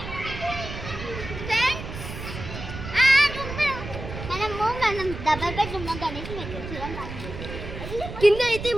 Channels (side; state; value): right; noise; rumble, 9 dB below the sound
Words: డబల్ బెడ్రూమ్ లో గణేష్ కింద అయితే